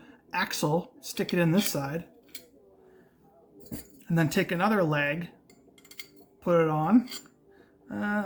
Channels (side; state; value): both; identical; correlation 1.00